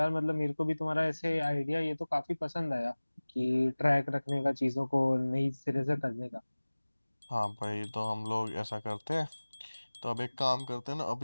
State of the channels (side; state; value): both; inverted; correlation -1.00